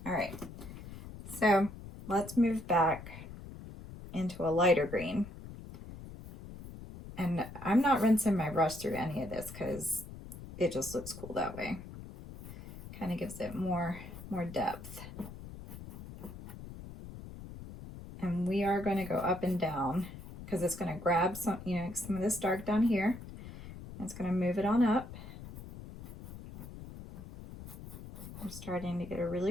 All right, so let's move back into a lighter green. And I'm not rinsing my brush through any of this because it just looks cool that way. Kind of gives it more depth. And we are going to go up and down because it's going to grab some of this dark down here. And it's going to move it on up. We're starting to get a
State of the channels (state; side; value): noise; left; rumble, 13 dB below the sound